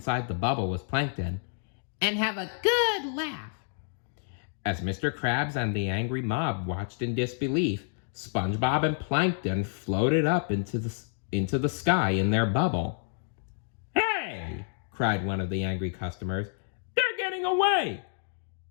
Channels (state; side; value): silent; right; digital silence